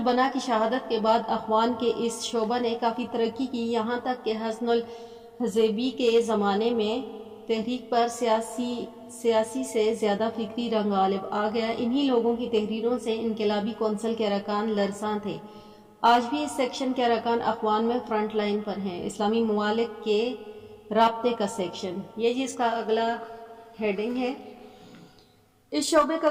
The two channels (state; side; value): identical; both; correlation 1.00